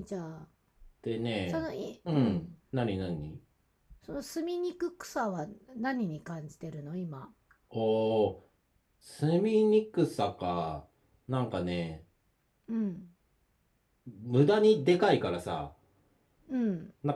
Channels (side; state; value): both; identical; correlation 1.00